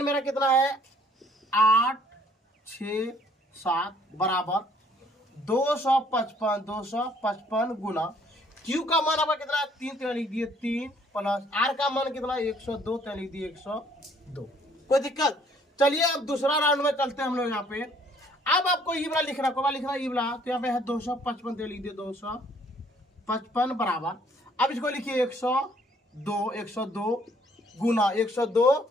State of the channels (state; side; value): normal; both; correlation 0.62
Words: मेरा कितना है 8 6 7 बराबर 255 गुना क्यू का मान आपका कितना है 3, तो लिख दिए 3 प्लस आर का मान कितना 102, तो लिख दिए 102। कोई दिक्कत? चलिए अब दूसरा राउंड में चलते हैं हम लोग यहाँ पे। अब आपको ये वाला लिखना ये वाला, तो यहाँ पे है 255, तो लिख दिए 255 बराबर। अब इसको लिखिए 102 गुना 102